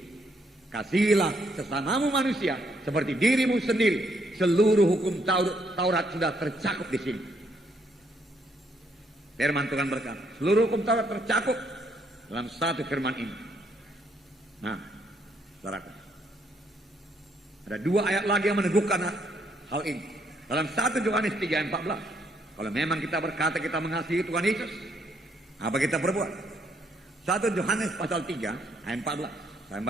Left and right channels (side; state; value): both; normal; correlation 0.72